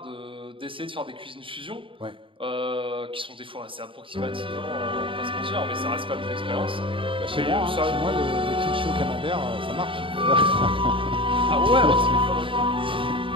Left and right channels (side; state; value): left; late; 0.25 ms